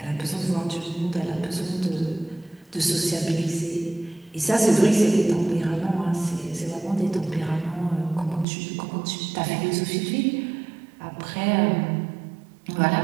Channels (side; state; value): left; drops out; at 8.5 s